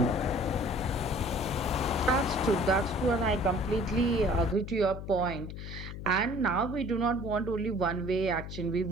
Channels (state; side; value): noise; left; hum, 9 dB below the sound